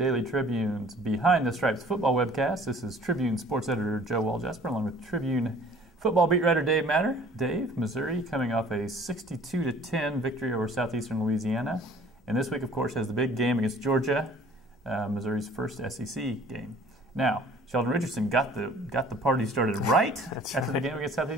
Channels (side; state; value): both; normal; correlation 0.52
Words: Tribune's Behind the Stripes football webcast. This is Tribune sports editor Joe Walljasper along with Tribune football beat writer Dave Matter. Dave, Missouri coming off a 62-10 victory over Southeastern Louisiana. And this week, of course, has the big game against Georgia, Missouri's first SEC game. Now, Sheldon Richardson got the party started right after the game against